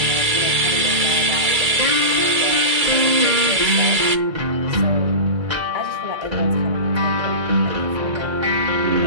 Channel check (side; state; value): left; late; 2.3 ms